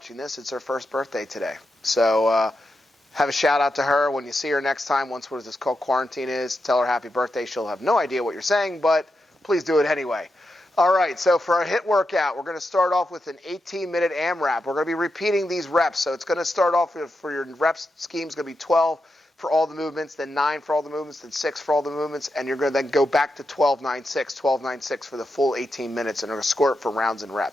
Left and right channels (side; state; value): both; normal; correlation 0.87